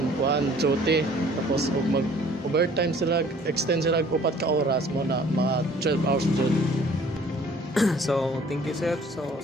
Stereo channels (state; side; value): normal; both; correlation 0.54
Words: kuan duty tapos ug mag overtime sila extend sila og 4 ka oras mo na mga 12 hours jud. So thank you sir, so